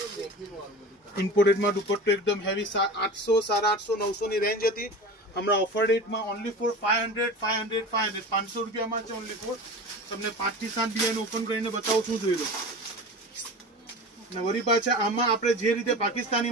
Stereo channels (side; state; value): both; normal; correlation 0.33